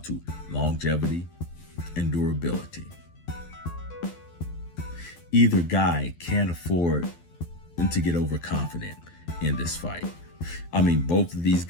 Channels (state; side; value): late; right; 12 ms